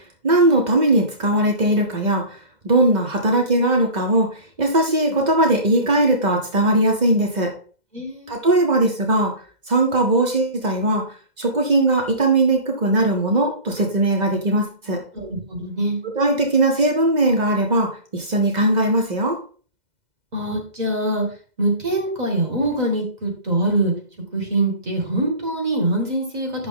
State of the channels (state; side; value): late; left; 2.0 ms